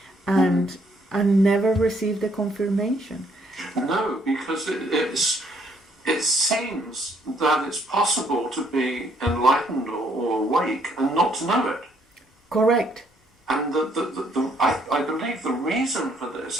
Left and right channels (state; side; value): normal; both; correlation 0.67